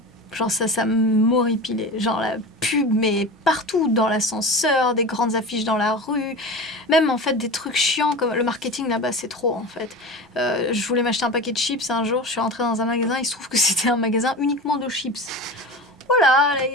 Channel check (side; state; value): both; normal; correlation 0.30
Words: Genre ça m'horripilait. Genre la pub, mais partout, dans l'ascenseur, des grandes affiches dans la rue. Même en fait des trucs chiants comme le marketing là-bas, c'est trop en fait. Je voulais m'acheter un paquet de chips un jour, je suis rentrée dans un magasin, il se trouve que c'était un magasin uniquement de chips. Voilà,